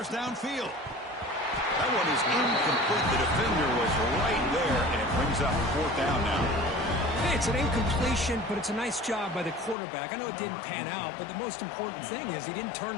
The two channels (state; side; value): drops out; right; at 9.8 s